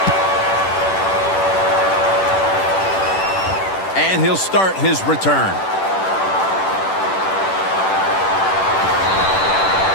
And he'll start his return.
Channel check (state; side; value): late; right; 10 ms